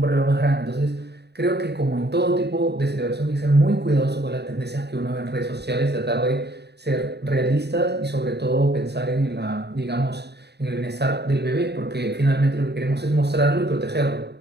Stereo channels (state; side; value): late; left; 0.48 ms